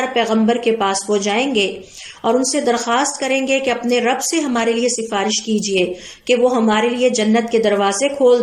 پیغمبر کے پاس وہ جائیں گے اور ان سے درخواست کریں گے کہ اپنے رب سے ہمارے لیے سفارش کیجئے کہ وہ ہمارے لیے جنت کے دروازے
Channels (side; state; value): both; identical; correlation 1.00